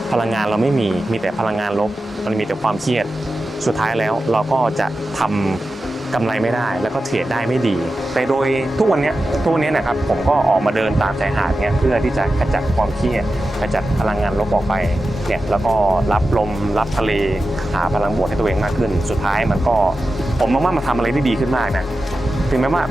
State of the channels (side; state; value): both; normal; correlation 0.92